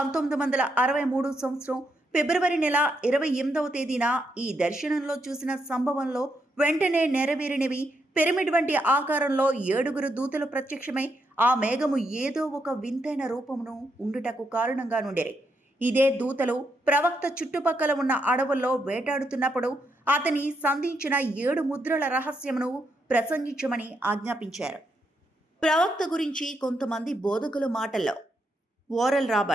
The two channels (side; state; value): both; normal; correlation 0.80